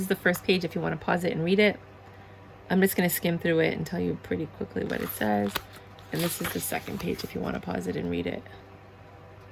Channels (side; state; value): both; identical; correlation 1.00